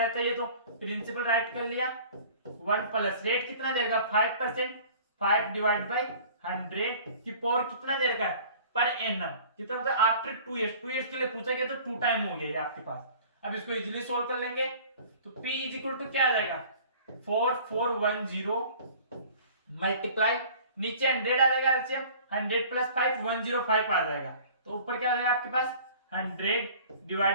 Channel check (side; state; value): both; inverted; correlation -0.47